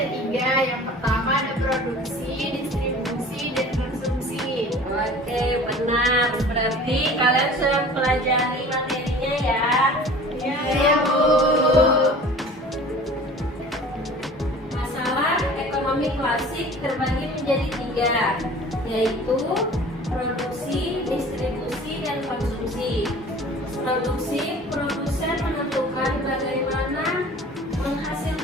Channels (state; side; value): normal; both; correlation 0.44